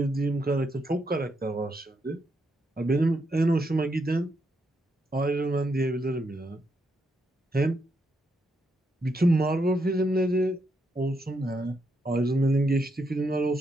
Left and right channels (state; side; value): normal; both; correlation 0.80